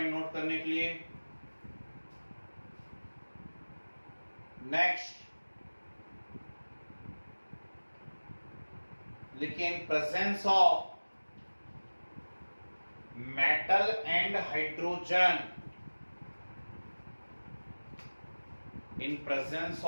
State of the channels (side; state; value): both; inverted; correlation -1.00